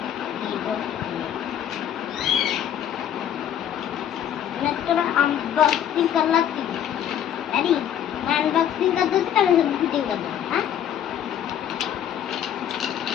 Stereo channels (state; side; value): quieter; right; 10.1 dB